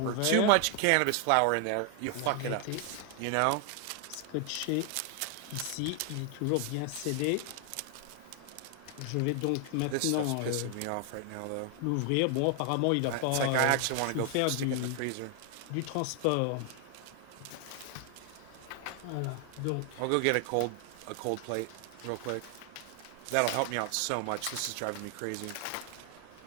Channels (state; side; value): different; both; correlation 0.00